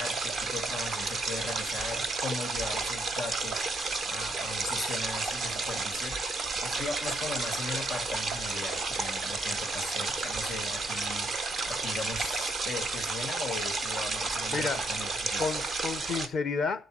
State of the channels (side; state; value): both; normal; correlation 0.74